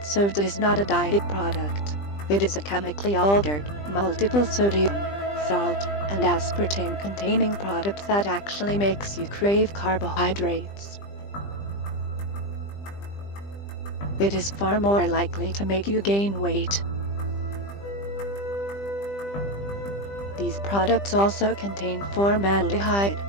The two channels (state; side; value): late; right; 20 ms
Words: soda is not a diet product. It is a chemically altered, multiple sodium, salt, and aspartame containing product that actually makes you crave carbohydrates. It is far more likely to make you gain weight. These products also contain formaldehyde,